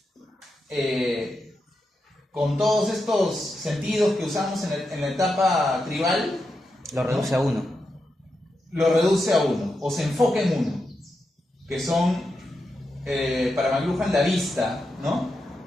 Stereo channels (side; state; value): both; normal; correlation 0.87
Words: con todos estos sentidos que usamos en la etapa tribal, Lo reduce a uno. Lo reduce a uno, o se enfoca en uno, que son, para McLuhan, la vista, ¿no?